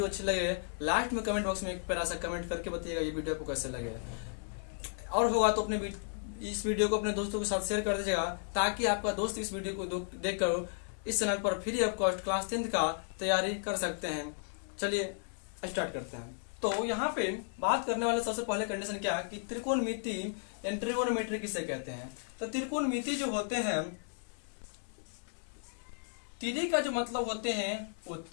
अच्छी लगे, लास्ट में कमेंट बॉक्स में एक प्यारा सा कमेंट करके बताइएगा ये वीडियो आपको कैसे लगे। और होगा तो अपने इस वीडियो को अपने दोस्तों के साथ शेयर कर दीजिएगा, ताकि आपका दोस्त इस वीडियो को देखकर इस चैनल पर free of cost class 10th का तैयारी कर सकते हैं। चलिए स्टार्ट करते हैं। तो यहाँ पे बात करने वाले सबसे पहले कंडीशन क्या है कि त्रिकोणमिति यानी ट्रिगोनोमेट्री किसे कहते हैं। तो त्रिकोणमिति जो होते हैं, तिरी का जो मतलब होते हैं वो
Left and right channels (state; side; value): silent; right; 55 dB below the other